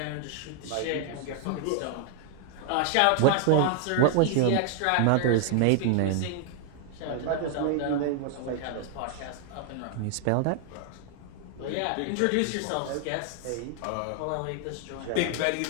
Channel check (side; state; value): both; different; correlation 0.00